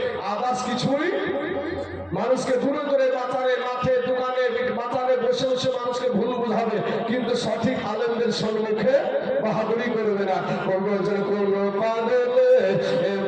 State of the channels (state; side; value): identical; both; correlation 1.00